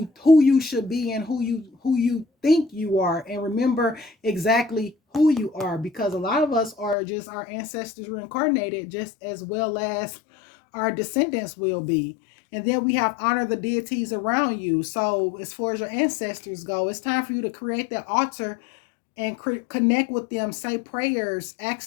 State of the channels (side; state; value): right; drops out; at 7.0 s